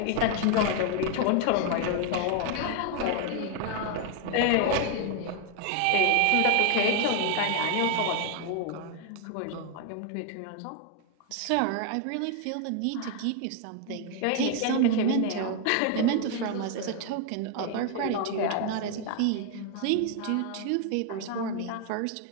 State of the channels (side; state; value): both; different; correlation 0.00